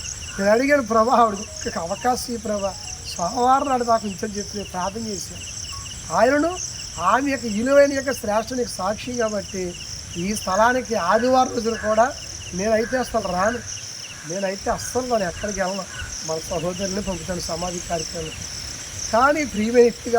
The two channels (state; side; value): identical; both; correlation 1.00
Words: నేను అడిగాను, ప్రభా ఆవిడ అవకాశం ఈ ప్రభా సోమవారం నాడు నాకు ఇంచని చెప్పి ప్రార్థన చేశాను. ఆయనను ఆమె యొక్క విలువైన యొక్క శ్రేష్ఠునికి సాక్షి కాబట్టి ఈ స్థలానికి ఆదివారం రోజులు కూడా నేనైతే అసలు రాను, నేనైతే అస్సలు నేను ఎక్కడికి వెళ్ళను, మన సహోదరుని పంపుతాను సమాధి కార్యక్రమానికి. కానీ ప్రియమైన వ్యక్తి